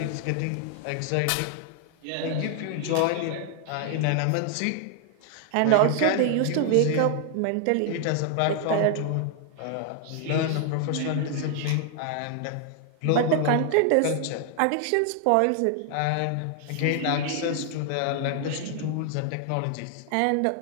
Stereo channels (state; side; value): different; both; correlation 0.00